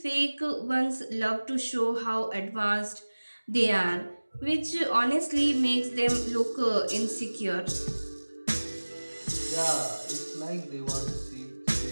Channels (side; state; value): both; inverted; correlation -1.00